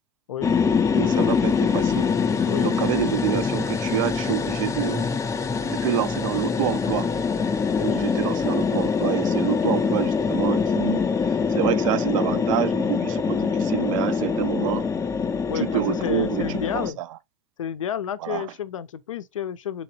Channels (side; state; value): both; normal; correlation 0.46